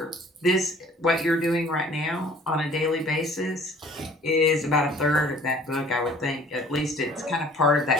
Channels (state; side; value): normal; both; correlation 0.52